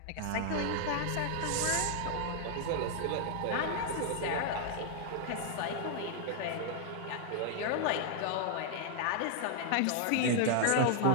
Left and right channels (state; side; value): different; both; correlation 0.00